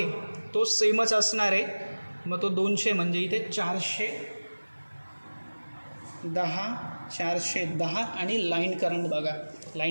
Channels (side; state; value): both; inverted; correlation -1.00